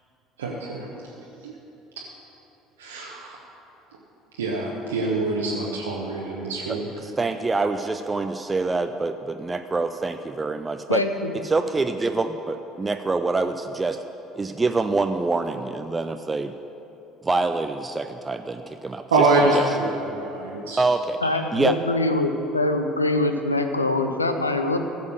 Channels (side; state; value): both; normal; correlation 0.38